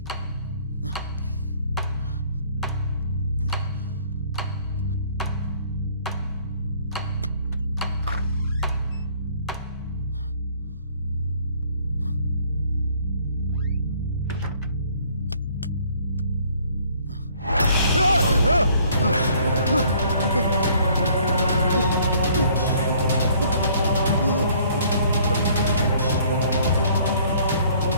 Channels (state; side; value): inverted; both; correlation -0.59